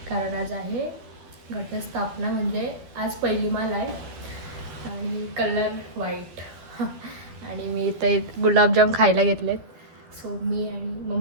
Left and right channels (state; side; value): late; left; 12 ms